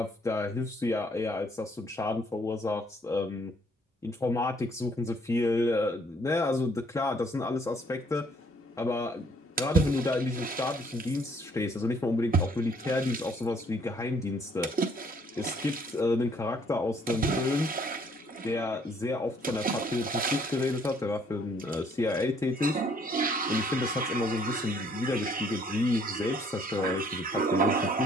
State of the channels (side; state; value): both; normal; correlation 0.63